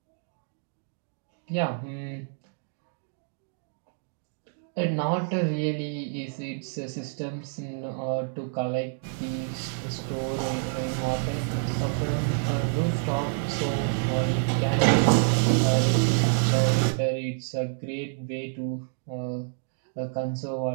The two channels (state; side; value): silent; left; digital silence